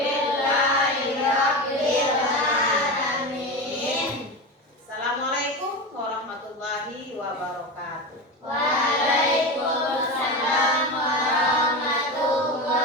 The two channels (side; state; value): both; normal; correlation 0.22